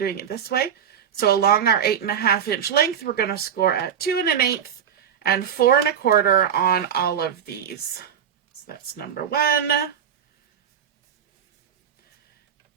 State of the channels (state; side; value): quieter; left; 8.4 dB